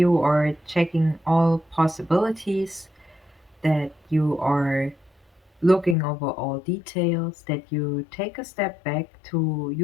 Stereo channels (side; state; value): right; drops out; at 6.0 s